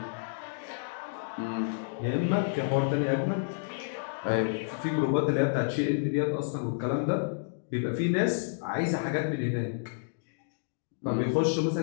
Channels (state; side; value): silent; right; digital silence